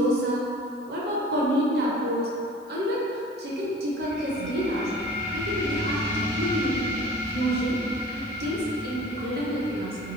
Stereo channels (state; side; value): noise; left; hiss, 29 dB below the sound